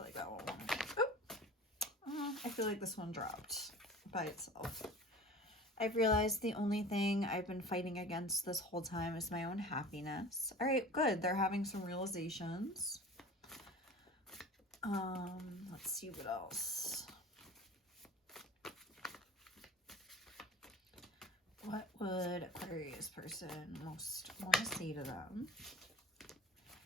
like that one. Oh. I feel like this one dropped by itself. I've realized the only thing I've been fighting against this whole time is my own happiness. All right, good. They're having some realizations. Let's see what else. What would Aquarius person most want to say to them?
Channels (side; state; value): both; normal; correlation 0.40